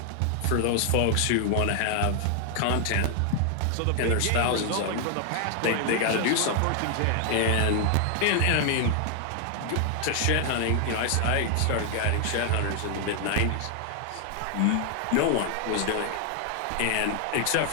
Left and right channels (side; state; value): both; different; correlation 0.00